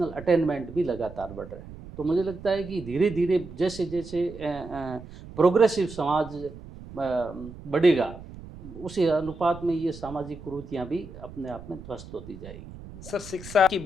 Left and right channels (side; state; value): right; noise; rumble, 15 dB below the sound